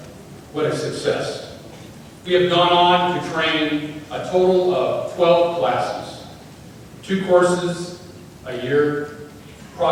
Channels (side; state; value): both; identical; correlation 1.00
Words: What a success. We have gone on to train a total of 12 classes, 2 courses a year,